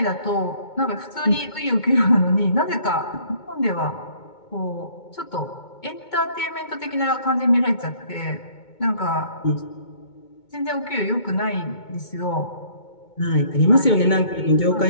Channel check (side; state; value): right; late; 2.2 ms